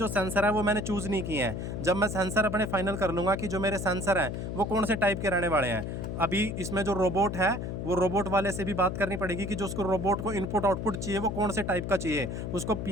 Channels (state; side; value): noise; left; hum, 5 dB below the sound